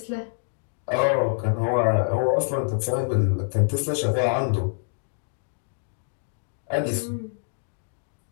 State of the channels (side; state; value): right; silent; digital silence